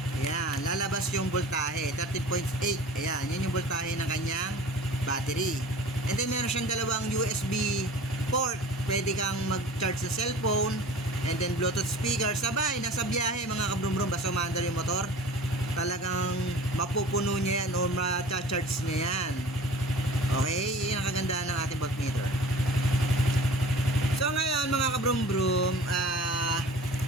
ayan, lalabas yung voltahe, 13.8. Ayan, yan yung voltahe ng kanyang battery. And then meron siyang dalawang USB port. Pwede kang mag-charge sa cellphone, and then Bluetooth speaker. Sabay, nasa biyahe mga kabrum-brum, basta umaandar yung motor, talagang mapupuno niya yan o ma-charge niya yan. Okay, yun ang kagandahan ng ating voltmeter. So ngayon mga kabrum-brum,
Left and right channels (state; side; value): normal; both; correlation 0.42